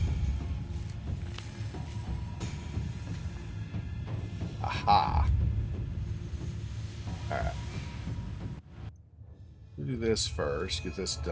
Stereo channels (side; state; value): both; identical; correlation 1.00